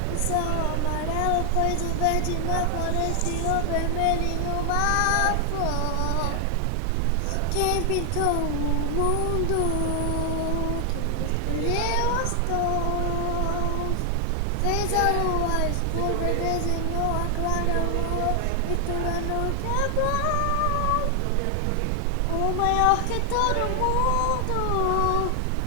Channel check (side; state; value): both; different; correlation 0.00